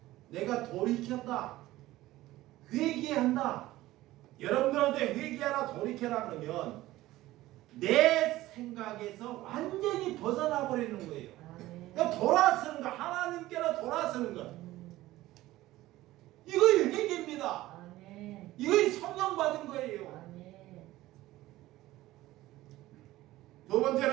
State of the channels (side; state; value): left; quieter; 16.6 dB